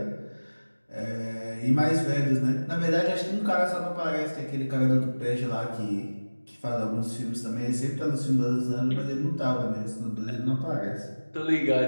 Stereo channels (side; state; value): both; inverted; correlation -1.00